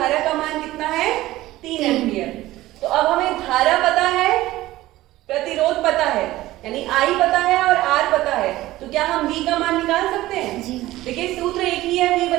का मान कितना है 3 एम्पियर। तो अब हमें धारा पता है, प्रतिरोध पता है, यानी I पता है और R पता है, तो क्या हम V का मान निकाल सकते हैं? देखिए सूत्र एक ही है, V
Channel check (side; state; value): left; quieter; 16.6 dB